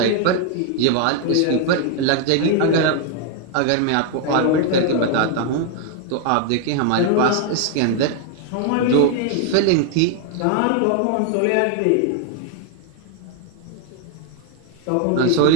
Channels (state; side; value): different; both; correlation 0.01